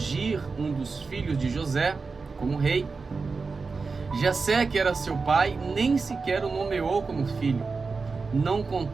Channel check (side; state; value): left; quieter; 4.4 dB